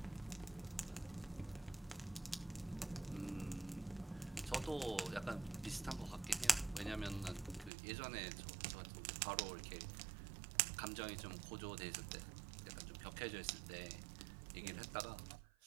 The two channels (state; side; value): drops out; left; at 7.7 s